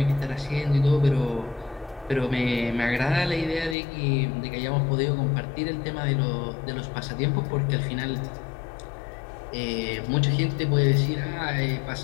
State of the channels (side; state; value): right; drops out; at 3.8 s